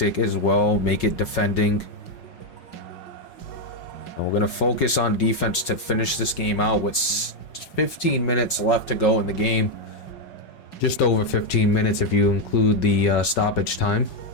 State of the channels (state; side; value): late; right; 5.5 ms